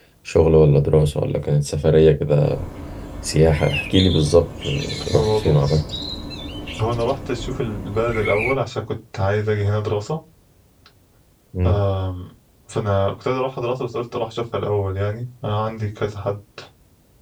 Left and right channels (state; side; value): identical; both; correlation 1.00